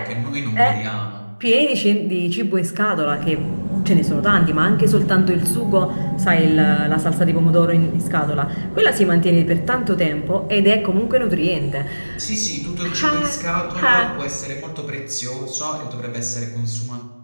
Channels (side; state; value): both; inverted; correlation -1.00